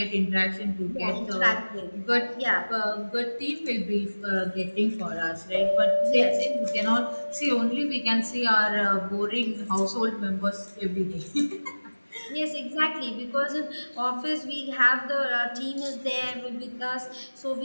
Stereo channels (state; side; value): inverted; both; correlation -1.00